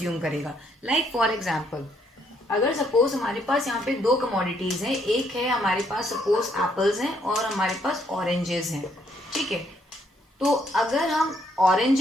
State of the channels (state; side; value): normal; both; correlation 0.71